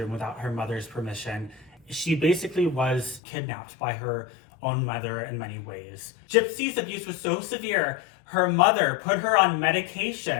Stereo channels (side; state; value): right; drops out; at 3.2 s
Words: without her mother's permission. She basically was kidnapped by her own mother in many ways. Gypsy's abuse was so severe, her mother put her on